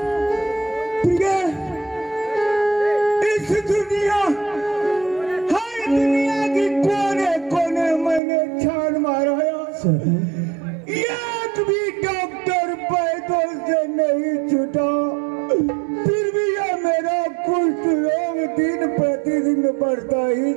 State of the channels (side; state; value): left; drops out; at 8.2 s